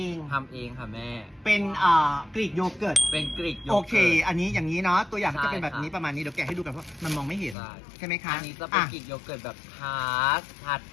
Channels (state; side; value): drops out; right; at 7.6 s